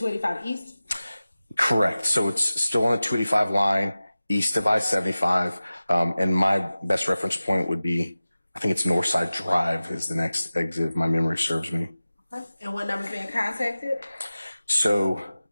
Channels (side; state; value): both; inverted; correlation -0.96